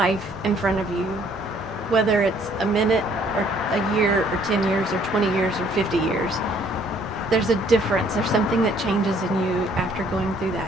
in front of you, whether it's a minute or a year or 10 years or 20 years or 50 years, there's a difference. There's something that changes in you after going through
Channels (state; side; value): normal; both; correlation 0.62